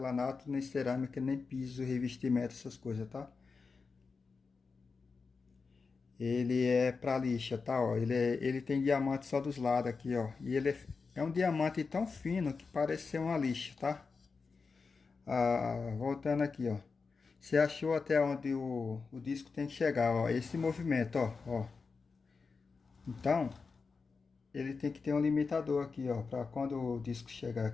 nem cerâmica, nem piso, revestimento, essas coisas, tá? Ele é para lixa, tá? Ó, ele tem diamante só dos lados aqui, ó. E ele é um diamante tão fino que parece ser uma lixa, tá? Voltando aqui, ó. Você achou até onde o disco tem que chegar, ó. Esse movimento, ó. Então, ele tem que ter um limitador aqui, ó. Para quando o disco chegar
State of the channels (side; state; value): right; quieter; 4.7 dB